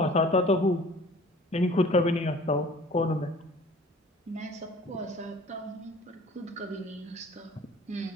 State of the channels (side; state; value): both; normal; correlation 0.48